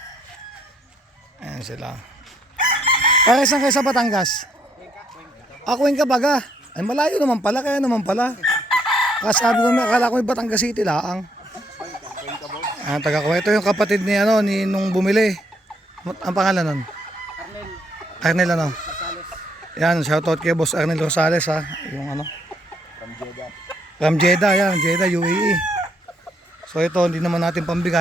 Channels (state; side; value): normal; both; correlation 0.70